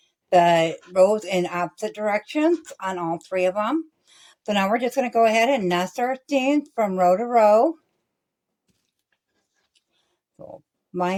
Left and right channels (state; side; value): identical; both; correlation 1.00